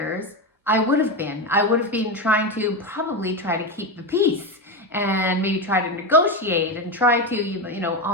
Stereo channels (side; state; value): both; normal; correlation 0.15